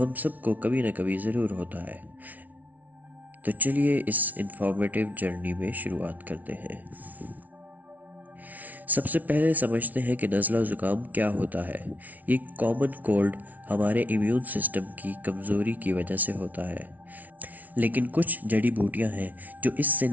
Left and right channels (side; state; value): left; late; 0.076 ms